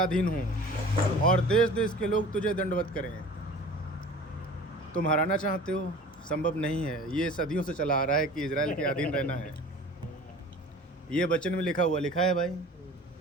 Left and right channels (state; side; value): normal; both; correlation 0.42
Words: हों और देश देश के लोग तुझे दंडवत करें। तुम हराना चाहते हो, संभव नहीं है। ये सदियों से चला आ रहा है कि इज़राइल के अधीन रहना है। ये वचन में लिखा है भाई।